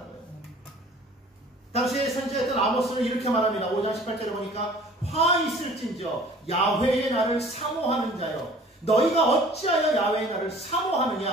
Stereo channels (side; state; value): both; normal; correlation 0.49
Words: 당시에 선지자였던 아모스는 이렇게 말합니다. 5장 18절에 보니까 화 있을진저 야훼의 날을 사모하는 자여, 너희가 어찌하여 야훼의 날을